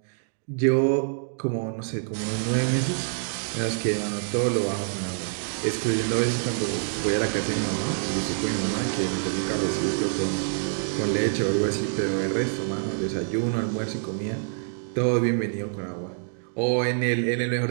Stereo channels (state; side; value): silent; left; digital silence